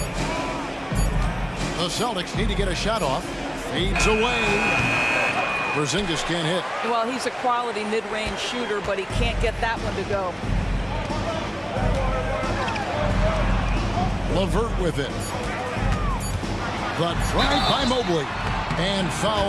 The Celtics need to get a shot off. Fades away. Porzingis can't hit. Well, he's a quality mid-range shooter, but he can't get that one to go. LeVert with it. The drive by Mobley. And foul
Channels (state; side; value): identical; both; correlation 1.00